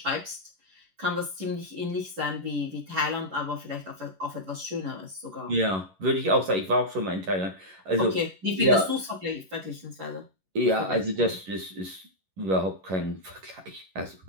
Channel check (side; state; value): left; late; 11 ms